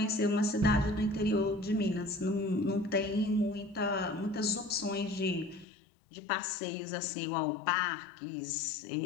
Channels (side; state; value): right; drops out; at 5.7 s